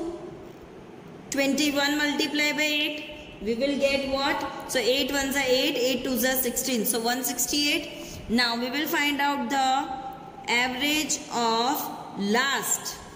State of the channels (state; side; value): identical; both; correlation 1.00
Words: 21 multiplied by 8. We will get what? So 8 ones are 8, 8 twos are 16. So 168. Now we will find out the average of last